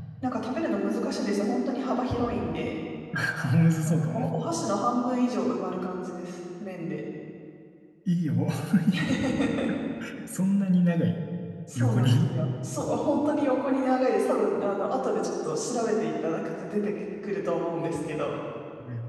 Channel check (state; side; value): identical; both; correlation 1.00